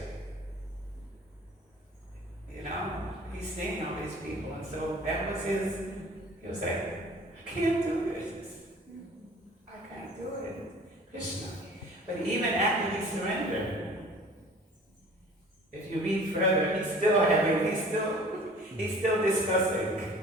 You know, he's seeing all these people, and so that was he was like, I can't do this. I can't do it. Krishna. But even after he surrendered, if you read further, he's still He's still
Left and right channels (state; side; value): normal; both; correlation 0.47